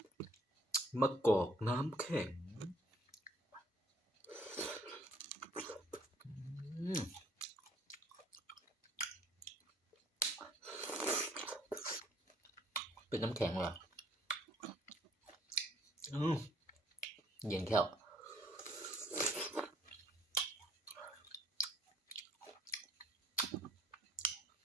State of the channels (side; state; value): both; normal; correlation 0.60